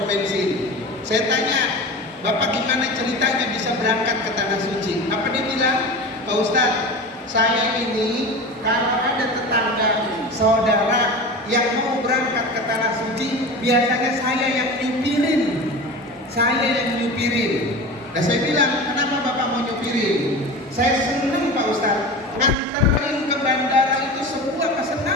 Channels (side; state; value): both; normal; correlation 0.31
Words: bensin. Saya tanya, Bapak gimana ceritanya bisa berangkat ke Tanah Suci? Apa dia bilang? Pak Ustadz, saya ini kalau ada tetangga, saudara yang mau berangkat ke Tanah Suci, biasanya saya yang nyupirin. Nah saya bilang, kenapa Bapak mau nyupirin? Saya senang Pak Ustadz, nganterin ke bandara itu sebuah